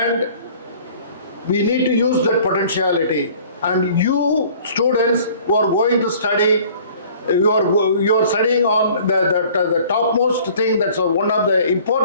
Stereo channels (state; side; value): inverted; both; correlation -0.51